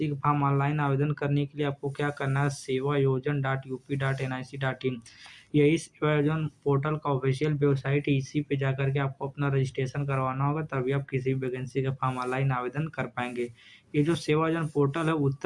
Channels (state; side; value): identical; both; correlation 1.00